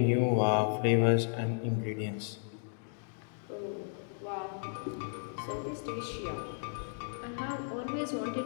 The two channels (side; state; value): right; silent; digital silence